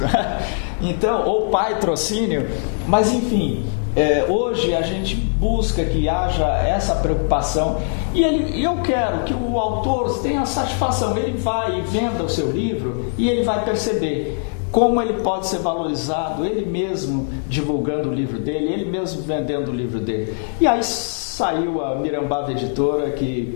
Então, ou patrocínio, mas enfim, hoje a gente busca que haja essa preocupação e eu quero que o autor tenha satisfação, ele vai e venda o seu livro e ele vai perceber como ele pode ser valorizado, ele mesmo divulgando o livro dele, ele mesmo vendendo o livro dele. E aí saiu a Mirambava Editora,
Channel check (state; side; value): silent; right; digital silence